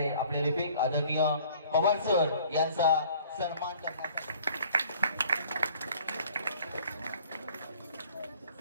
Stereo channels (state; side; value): inverted; both; correlation -0.53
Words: आपले लिपिक आदरणीय पवार सर यांचा सन्मान करण्यासाठी